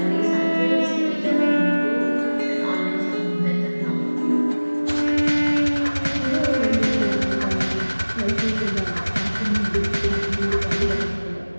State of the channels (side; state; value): both; inverted; correlation -1.00